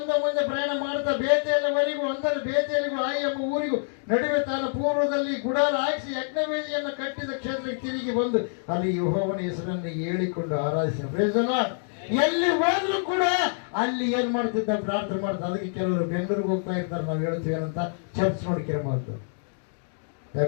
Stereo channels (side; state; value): right; silent; digital silence